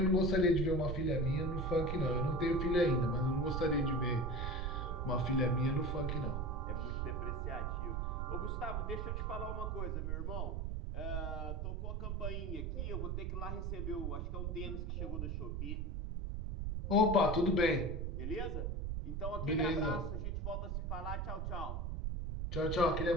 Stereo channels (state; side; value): noise; right; rumble, 1 dB below the sound